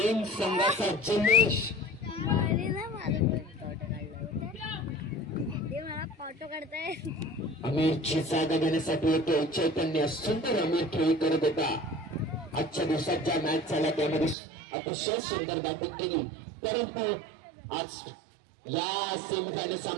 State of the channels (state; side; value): drops out; left; at 14.4 s